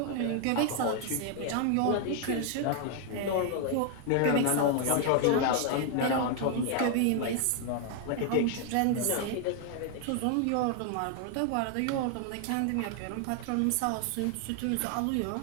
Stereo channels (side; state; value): both; different; correlation 0.00